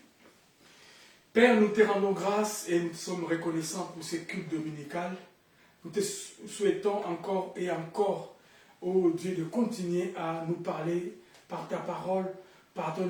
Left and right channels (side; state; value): both; identical; correlation 1.00